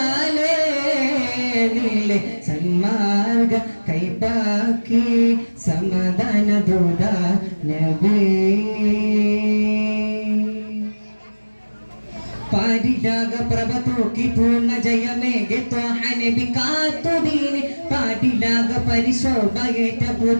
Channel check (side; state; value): both; inverted; correlation -1.00